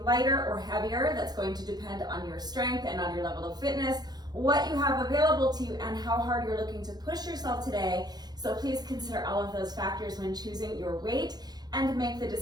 lighter or heavier. That's going to depend on your strength and on your level of fitness, what you have available to you, and how hard you're looking to push yourself today. So please consider all of those factors when choosing your weight and make the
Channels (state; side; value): late; left; 0.19 ms